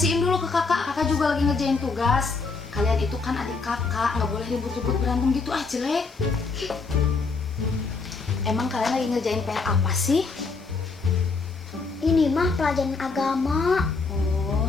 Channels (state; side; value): quieter; right; 4.3 dB